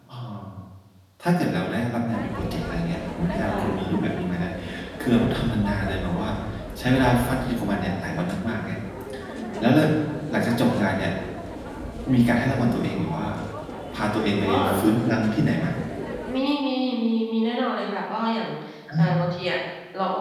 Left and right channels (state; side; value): identical; both; correlation 1.00